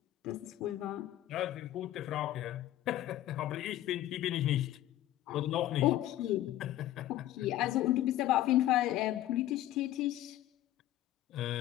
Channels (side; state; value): right; quieter; 13.9 dB